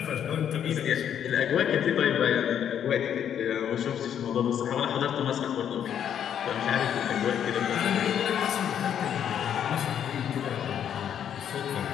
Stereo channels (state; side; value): quieter; right; 9.2 dB